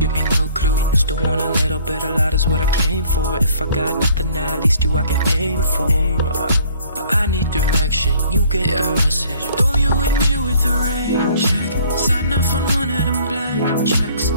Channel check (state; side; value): inverted; both; correlation -0.56